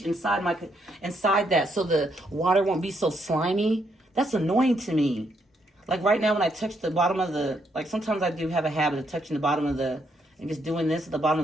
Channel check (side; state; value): both; normal; correlation 0.75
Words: inside that so the water won't be so slimy. That's annoying to me. Like right now when I touch the bottom of the, like sometimes I do have a habit of touching the bottom of the, and just doing this at the bottom